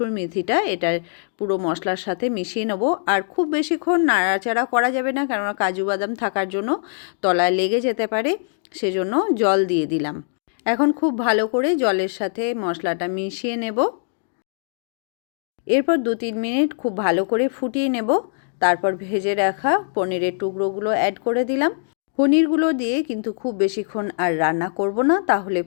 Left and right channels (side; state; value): right; silent; digital silence